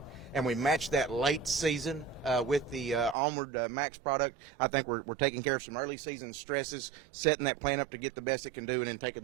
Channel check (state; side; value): drops out; left; at 3.2 s